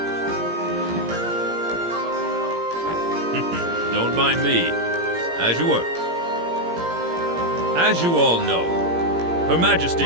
Don't mind me. As you were. As you all know, Her Majesty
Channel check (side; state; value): left; late; 17 ms